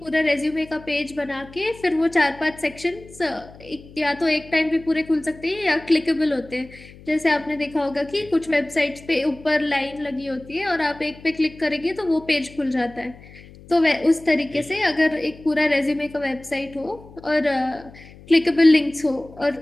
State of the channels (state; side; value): noise; left; hum, 20 dB below the sound